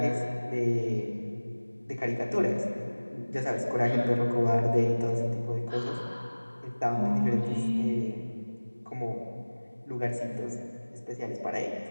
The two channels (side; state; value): both; inverted; correlation -1.00